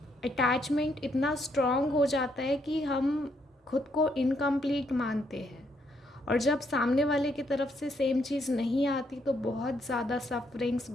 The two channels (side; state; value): both; normal; correlation 0.73